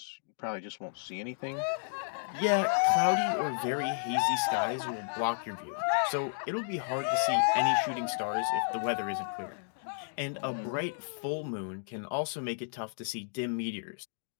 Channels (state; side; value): silent; right; digital silence